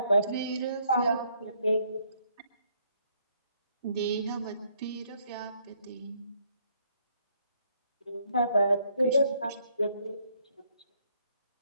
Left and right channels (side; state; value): both; inverted; correlation -0.69